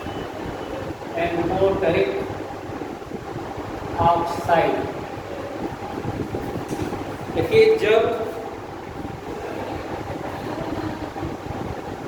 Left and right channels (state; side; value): identical; both; correlation 1.00